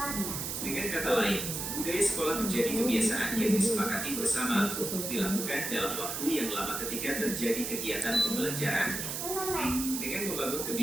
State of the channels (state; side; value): noise; right; hiss, 4 dB below the sound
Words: Dengan kata lain, budaya sekolah menjadi kebiasaan yang disepakati bersama untuk dilakukan dalam waktu yang lama ketika terjadi kegiatan pembelajaran. Dengan membangun